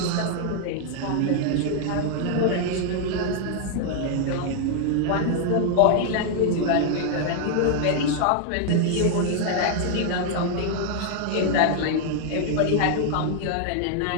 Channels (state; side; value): different; both; correlation 0.00